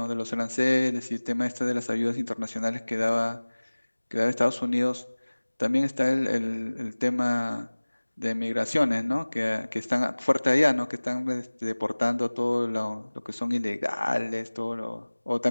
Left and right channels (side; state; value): both; inverted; correlation -1.00